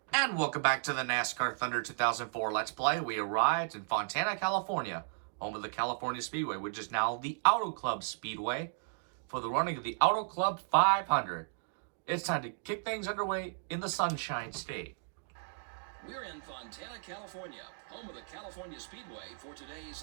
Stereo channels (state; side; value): silent; left; digital silence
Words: And welcome back to the NASCAR Thunder 2004 Let's Play. We arrived in Fontana, California, home of the California Speedway, which is now the Auto Club Speedway, for the running of the Auto Club 500. It's time to kick things underway in the Sunshine State. We're in Fontana, California, home of the California Speedway for